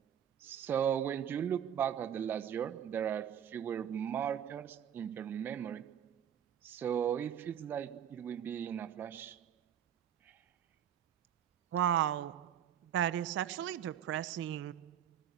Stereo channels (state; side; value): quieter; left; 9.6 dB